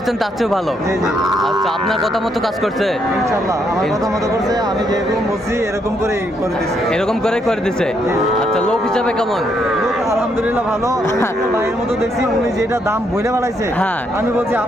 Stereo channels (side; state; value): both; normal; correlation 0.75